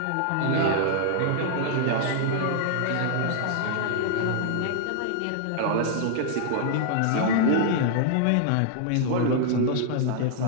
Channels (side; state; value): both; different; correlation -0.01